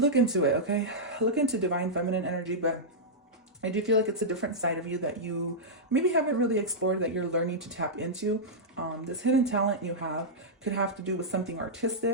into it, okay? Look into divine feminine energy, but I do feel like it's a different side of you that you maybe haven't really explored, that you're learning to tap into. This hidden talent you have could have to do with something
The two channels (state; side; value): normal; both; correlation -0.10